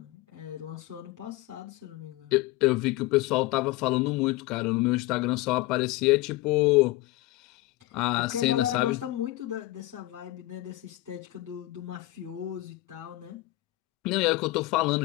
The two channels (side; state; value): right; quieter; 18.4 dB